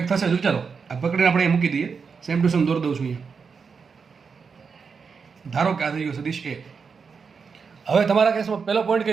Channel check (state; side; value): quieter; left; 5.6 dB